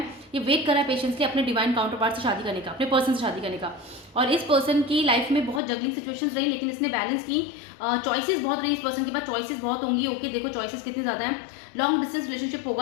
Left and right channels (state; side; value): drops out; right; at 5.6 s